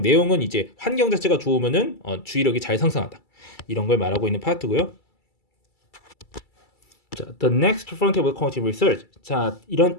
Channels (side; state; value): right; late; 2.3 ms